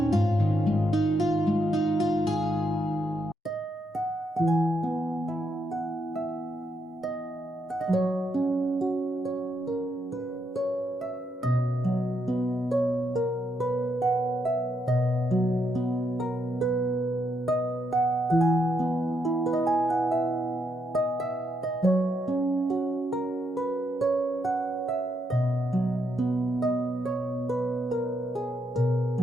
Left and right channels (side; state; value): both; normal; correlation 0.79